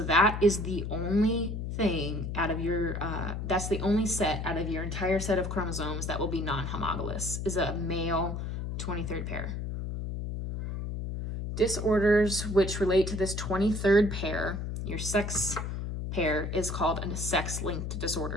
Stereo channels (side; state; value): left; noise; hum, 4 dB below the sound